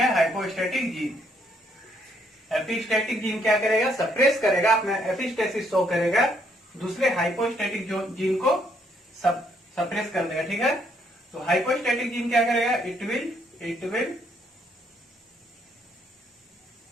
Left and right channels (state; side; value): normal; both; correlation 0.70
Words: हाइपोस्टैटिक जीन। एपिस्टैटिक जीन क्या करेगा, सप्रेस करेगा, अपना एपिस्टेसिस शो करेगा, दूसरे हाइपोस्टैटिक जो जीन को सप्रेस कर देगा। ठीक है, तो हाइपोस्टैटिक जीन क्या करेगा, it will